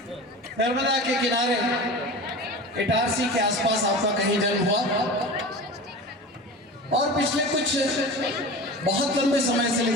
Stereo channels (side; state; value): both; normal; correlation 0.33